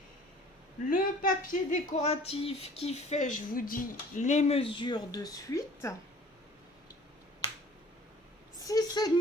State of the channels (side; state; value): both; normal; correlation 0.50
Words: Le papier décoratif qui fait, je vous dis, les mesures de suite.